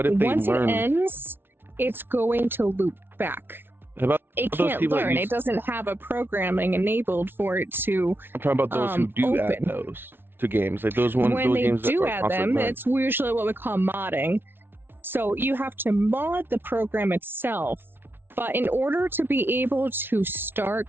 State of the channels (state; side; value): late; left; 0.11 ms